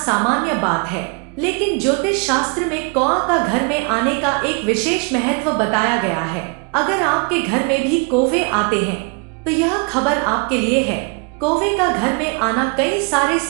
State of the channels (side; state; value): left; quieter; 33.5 dB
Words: बात है, लेकिन ज्योतिष शास्त्र में कौआ का घर में आने का एक विशेष महत्व बताया गया है। अगर आपके घर में भी कौवे आते हैं तो यह खबर आपके लिए है। कौवे का घर में आना कई सारे